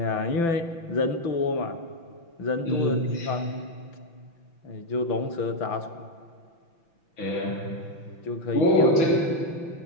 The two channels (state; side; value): late; right; 6.0 ms